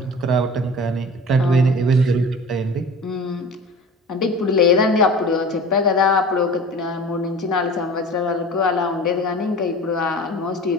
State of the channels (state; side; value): normal; both; correlation 0.39